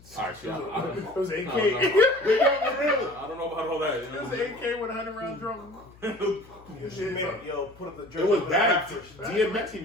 All right, see, I It was AK. I don't know about all that. It was an AK with 100 round drum. Yo, put up the drum. It was bad. DMX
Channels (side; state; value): left; noise; hum, 24 dB below the sound